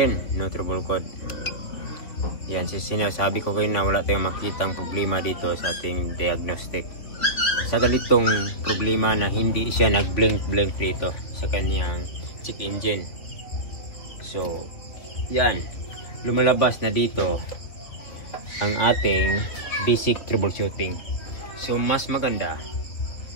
no trouble code. Yan, sinasabi ko kayo na wala tayong makitang problema dito sa ating diagnostic. Sa ganitong problema na hindi siya nag-blink dito sa kanyang check engine. So yan, lumalabas na dito ang ating basic troubleshooting. So mas maganda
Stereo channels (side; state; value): right; late; 4.0 ms